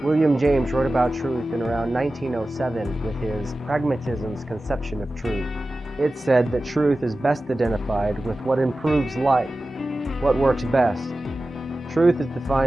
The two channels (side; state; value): both; normal; correlation 0.95